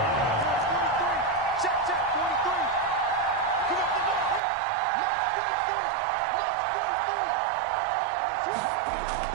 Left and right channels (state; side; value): drops out; left; at 4.4 s